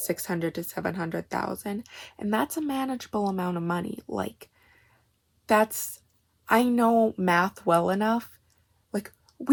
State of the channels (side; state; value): both; identical; correlation 1.00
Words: to 700,000, and that's a manageable amount of money. Like, I know math well enough. Like,